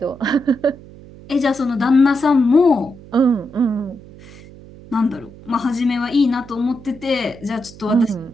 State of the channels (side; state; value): right; noise; hum, 19 dB below the sound